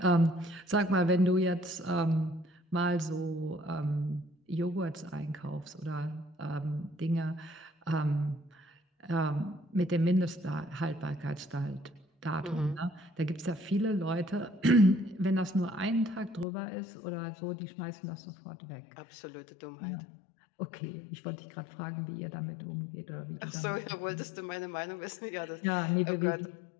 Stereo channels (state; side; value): drops out; right; at 16.4 s